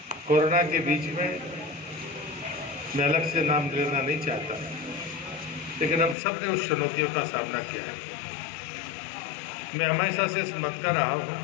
कोरोना के बीच में मैं अलग से नाम लेना नहीं चाहता, लेकिन हम सब ने उस चुनौतियों का सामना किया है। मैं हमेशा से समझता रहा हूँ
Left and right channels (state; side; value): drops out; right; at 6.2 s